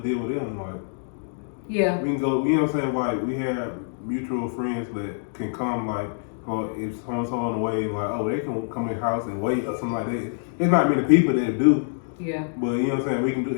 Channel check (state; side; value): silent; right; digital silence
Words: deal with them. Like, yeah, we can go. You know what I'm saying? Like, we have mutual friends that can come. Like, or if someone's on the way, like, oh, they can come in the house and wait or something like that. There's not many people that do. Yeah. But you know what I'm saying? We can do